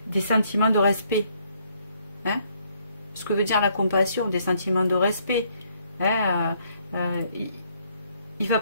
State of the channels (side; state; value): both; inverted; correlation -0.68